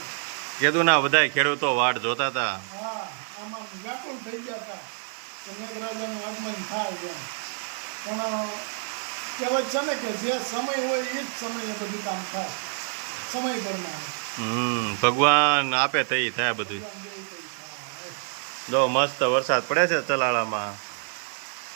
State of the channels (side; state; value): left; silent; 60 dB below the other